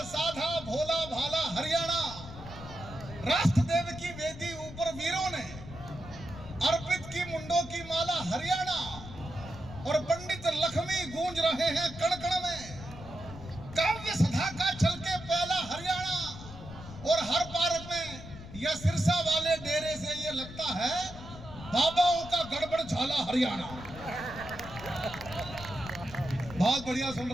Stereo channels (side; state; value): left; noise; rumble, 13 dB below the sound